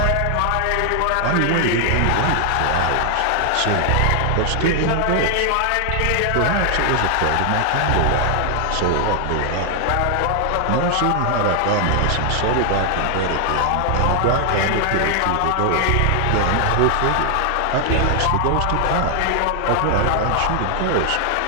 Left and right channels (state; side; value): different; both; correlation 0.00